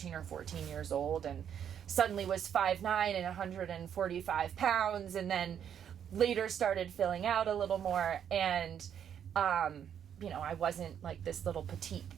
or 14 years old and suddenly was 5'9" and 145 pounds, and then later started filling out a little more, and I wasn't like this little petite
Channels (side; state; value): left; quieter; 8.8 dB